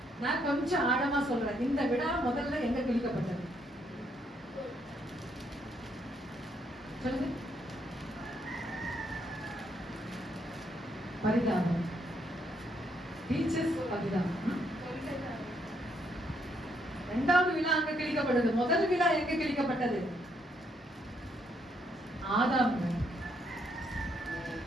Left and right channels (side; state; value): both; normal; correlation 0.73